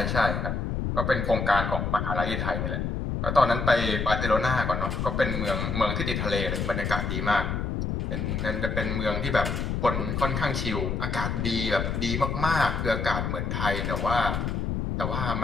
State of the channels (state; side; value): noise; left; rumble, 1 dB below the sound